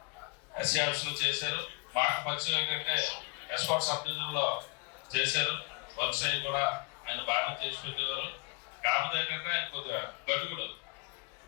ఆఫీస్ లో చేశారు. మాకు పరిచయం ఏంటంటే ఎస్కాట్ సబ్ డివిజన్లో చేశారు. వర్క్ సైడ్ కూడా ఆయన బాగా చేసి పెట్టేవారు. కాకపోతే ఏంటంటే ఆయన కొద్దిగా గడుగుడు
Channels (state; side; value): quieter; right; 31.2 dB